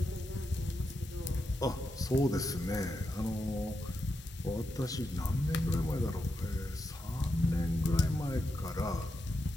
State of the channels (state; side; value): normal; both; correlation 0.86